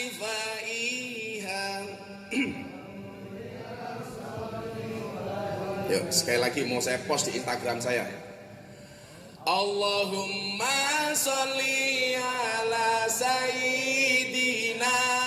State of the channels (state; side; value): identical; both; correlation 1.00